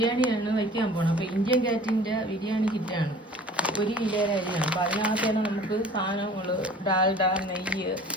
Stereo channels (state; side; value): normal; both; correlation 0.46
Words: വയ്ക്കാൻ പോകണം. അപ്പോൾ ഇന്ത്യൻ ഗേറ്റിൻ്റെ ബിരിയാണി കിറ്റാണ് 1 കിലോയുടെ അരിയാണ്. അപ്പോൾ അതിനകത്താണ് നമുക്ക് സാധനങ്ങൾ ഡാൽഡ, നെയ്യ്,